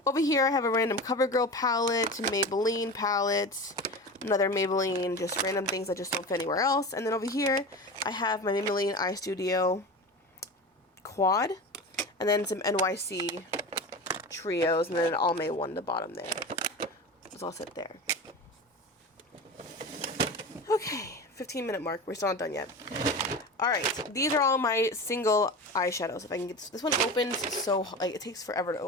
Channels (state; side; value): normal; both; correlation 0.29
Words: Over here I have a random CoverGirl palette, Maybelline palette, another Maybelline, just random things that just don't fit anywhere else. And then over here I have my Maybelline Eye Studio quad, and then some NYC trios, and then an All May one at the bottom there. This all sit there. Okay, 15-minute mark. We're still not done yet. Alright, these are all my single eyeshadows. If I can get this one opens so, like, it takes forever to